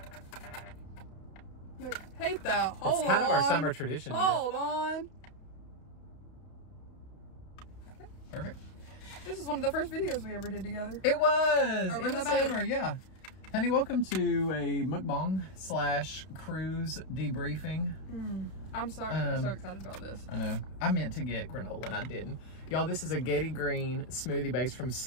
Wait, hate that. Hold on. It's kind of our summer tradition. Hold on. Perfect. This is one of the first videos we ever did together. It was! Over in the summer, yeah. Honey, welcome to a mukbang / cruise debriefing. I'm sorry. I'm so excited about this. I know. I meant to get granola and I didn't. Y'all, this is a Getty Green smoothie base from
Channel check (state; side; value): late; right; 32 ms